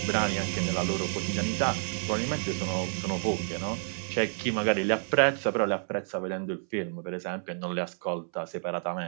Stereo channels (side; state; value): left; silent; 58 dB below the other